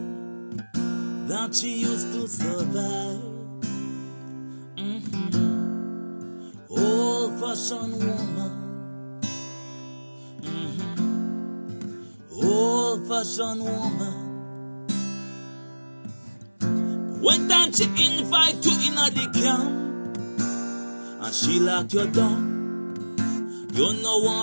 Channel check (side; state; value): both; inverted; correlation -1.00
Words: that she used to survive. Old-fashioned woman. Old-fashioned woman. One time she invite you in the camp and she lock you down. You know